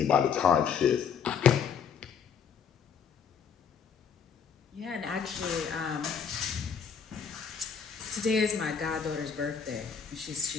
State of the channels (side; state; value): right; quieter; 6.9 dB